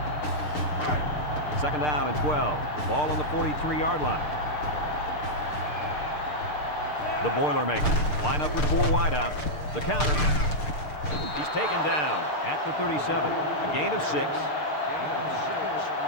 Second down and 12. Ball on the 43-yard line. The Boilermakers line up with 4 wideouts. The counter. He's taken down at the 37. A gain of 6. Gain of 6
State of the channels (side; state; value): right; late; 6.7 ms